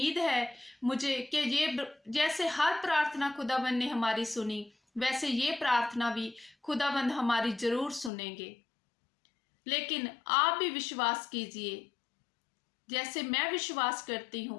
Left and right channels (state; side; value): drops out; right; at 8.1 s